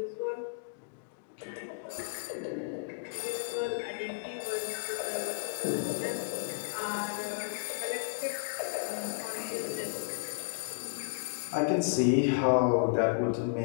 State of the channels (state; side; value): silent; right; digital silence